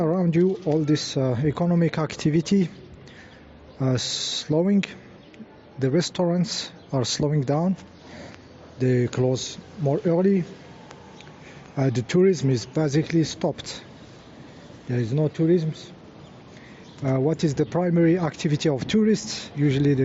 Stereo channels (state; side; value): identical; both; correlation 1.00